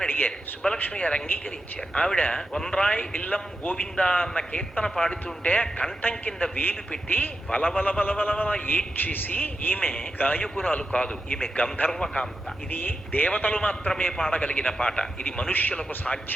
అడిగారు. సుబ్బలక్ష్మి గారు అంగీకరించారు. ఆవిడ వన్రాయ్ ఇల్లం గోవిందా అన్న కీర్తన పాడుతుంటే కంఠం కింద వేలు పెట్టి వలవల వలవల ఏడ్చేసి, ఈమె గాయకురాలు కాదు, ఈమె గంధర్వకాంత, ఇది దేవతలు మాత్రమే పాడగలిగిన పాట, ఇది మనుష్యులకు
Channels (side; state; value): both; normal; correlation 0.88